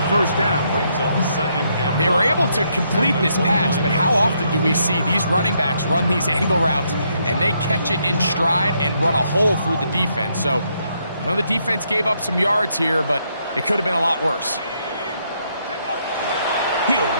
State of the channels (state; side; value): inverted; both; correlation -0.75